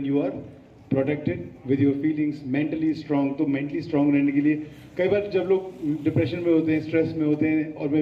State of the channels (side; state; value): both; identical; correlation 1.00